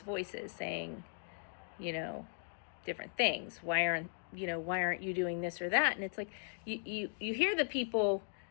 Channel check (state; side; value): silent; right; digital silence